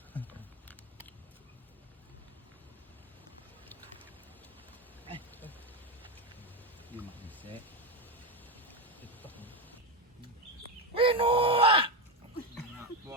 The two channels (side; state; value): both; normal; correlation 0.11